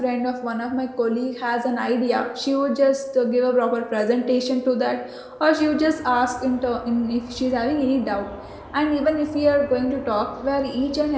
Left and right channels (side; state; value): both; identical; correlation 1.00